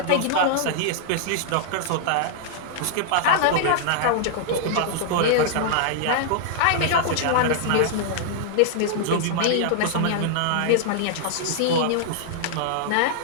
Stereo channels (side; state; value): both; different; correlation -0.01